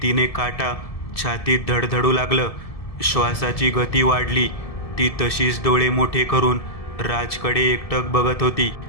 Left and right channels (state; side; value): late; right; 1.7 ms